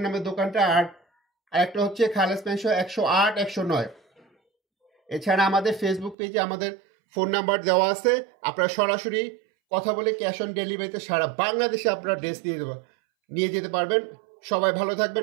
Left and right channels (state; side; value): drops out; left; at 6.2 s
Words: নামে দোকানটা। আর একটা হচ্ছে খালেস মেনশন 108 109। এছাড়া আমাদের ফেসবুক পেজে আমাদের ফোন নাম্বার দেওয়া আছে, আপনারা সরাসরি কথা বলে ক্যাশ অন ডেলিভারিতে সারা বাংলাদেশে আপনারা ড্রেস নিয়ে যেতে পারবেন। সবাই ভালো